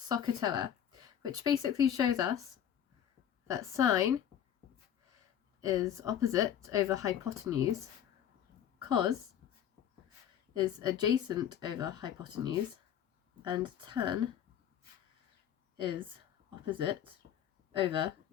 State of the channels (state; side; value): quieter; right; 9.9 dB